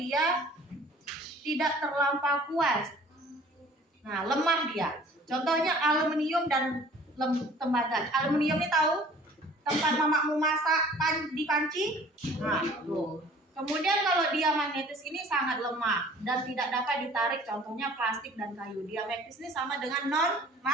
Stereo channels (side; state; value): both; normal; correlation 0.50